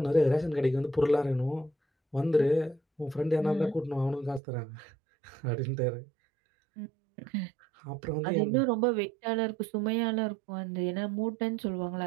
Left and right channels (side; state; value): left; drops out; at 4.4 s